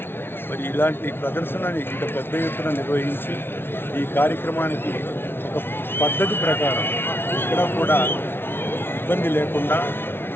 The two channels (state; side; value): late; right; 0.11 ms